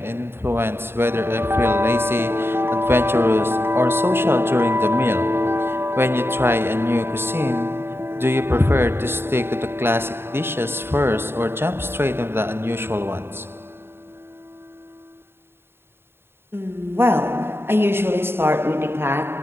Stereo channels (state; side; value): late; left; 0.11 ms